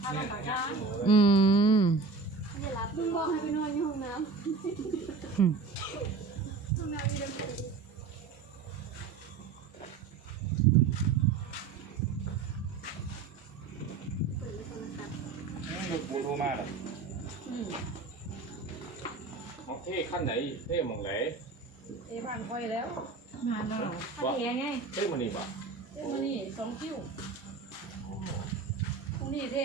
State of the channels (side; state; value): left; quieter; 4.6 dB